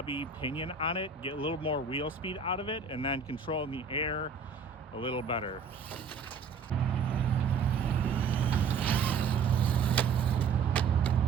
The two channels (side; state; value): left; quieter; 5.6 dB